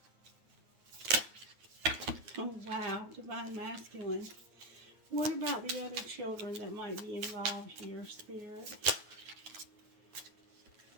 Oh, wow. Divine Masculine. What about the other children that might be involved here, Spirit?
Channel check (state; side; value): late; left; 9.5 ms